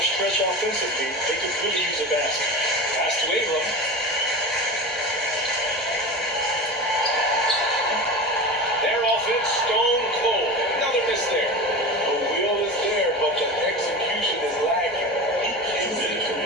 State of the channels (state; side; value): normal; both; correlation 0.29